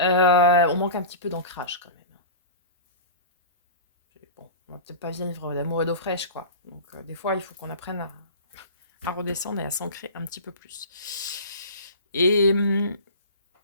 manque un petit peu d'ancrage quand même. Bon, on va peut-être pas vivre d'amour et d'eau fraîche, quoi. Donc des fois, il faut qu'on apprenne à redescendre et à s'ancrer un petit peu plus. Et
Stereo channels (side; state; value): both; inverted; correlation -0.33